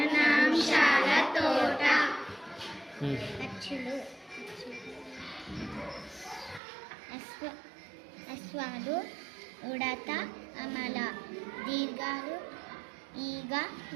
తోట. అచ్చులు, అశ్వాలు, ఉడత, అమల, దీర్ఘాలు, ఈగ,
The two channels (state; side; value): drops out; left; at 6.6 s